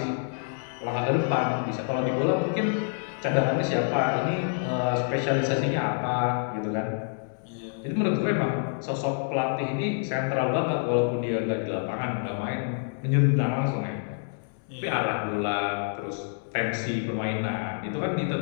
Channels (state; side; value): silent; right; 60 dB below the other